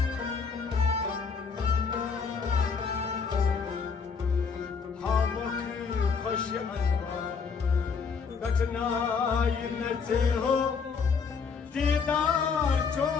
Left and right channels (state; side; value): quieter; right; 5.5 dB